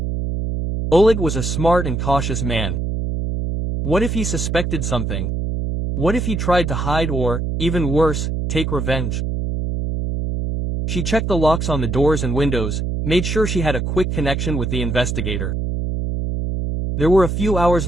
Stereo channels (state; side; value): noise; right; hum, 1 dB below the sound